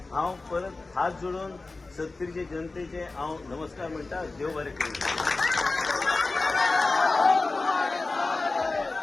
हांव परत हात जोडून 70चे जनतेचे हांव नमस्कार म्हणटा. देव बरें करूं.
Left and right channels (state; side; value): quieter; right; 3.5 dB